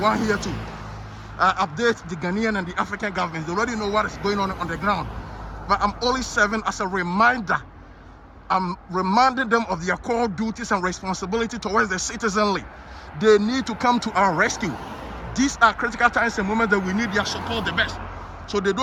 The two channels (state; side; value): identical; both; correlation 1.00